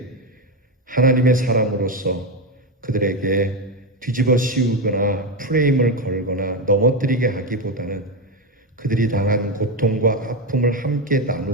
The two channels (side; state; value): both; normal; correlation 0.12